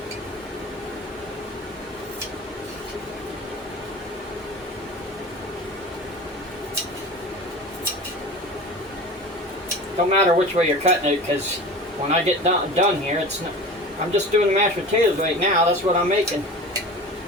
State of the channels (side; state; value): both; normal; correlation 0.35